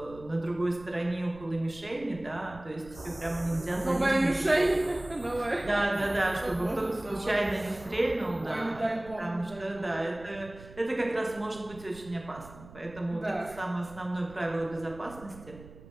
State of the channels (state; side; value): noise; right; rumble, 18 dB below the sound